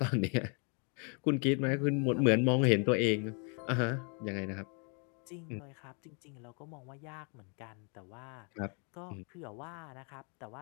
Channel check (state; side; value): quieter; right; 37.4 dB